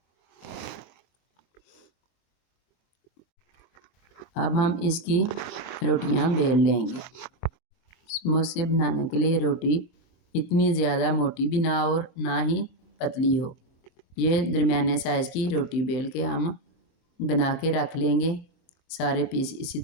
अब हम इसकी रोटियां बेल लेंगे। समोसे बनाने के लिए रोटी इतनी ज़्यादा मोटी भी ना हो और ना ही पतली हो। ये दरमियाने साइज़ की रोटी बेल के हम बना के रख लेंगे। सारे पीस इसी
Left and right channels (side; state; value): right; late; 22 ms